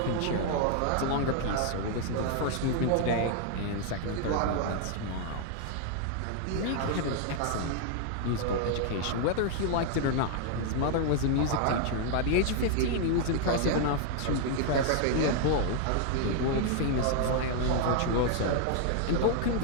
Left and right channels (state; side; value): different; both; correlation 0.00